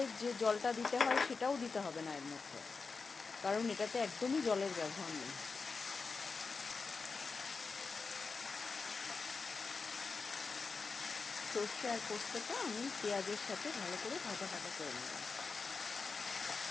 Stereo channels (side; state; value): right; quieter; 4.6 dB